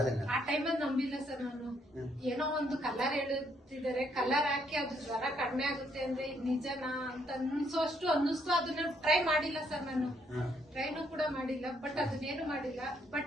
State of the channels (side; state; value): both; normal; correlation 0.71